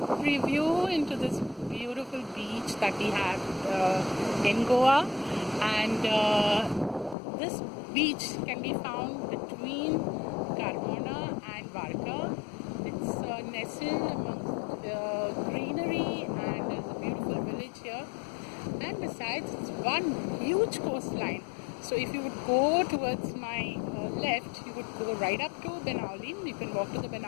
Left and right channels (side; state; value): right; drops out; at 7.2 s